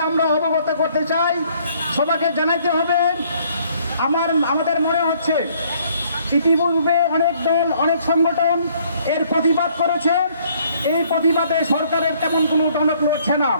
আমরা অবগত করতে চাই। সবাইকে জানাইতে হবে। আমাদের মনে হচ্ছে ইতিপূর্বে অনেক দল, অনেক সংগঠন এর প্রতিবাদ করেছে। এই প্রতিবাদে সরকারের তেমন কোনো টনক লড়ছে না।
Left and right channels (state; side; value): inverted; both; correlation -0.63